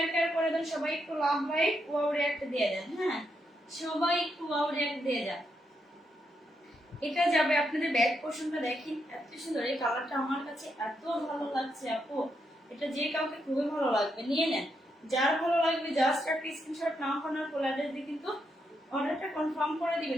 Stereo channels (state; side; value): normal; both; correlation 0.81